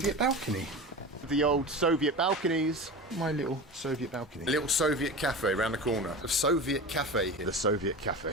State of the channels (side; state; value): both; normal; correlation 0.30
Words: balcony. The old Soviet balconies. My little Soviet balcony. A little Soviet cafe around the corner. A Soviet cafe here. The Soviet